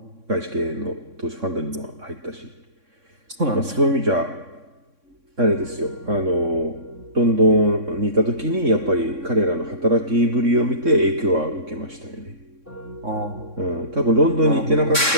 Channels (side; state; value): left; late; 3.6 ms